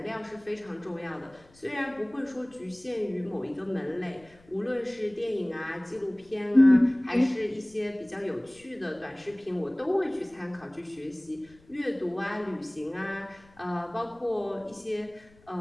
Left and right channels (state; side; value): noise; left; rumble, 28 dB below the sound